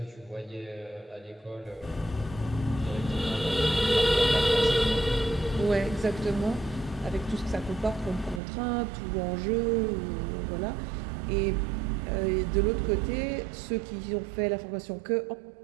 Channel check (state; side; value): drops out; left; at 8.4 s